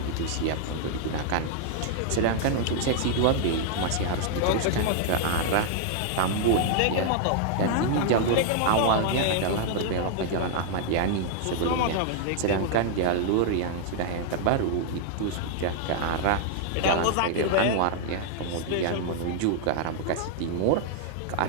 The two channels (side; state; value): both; different; correlation 0.00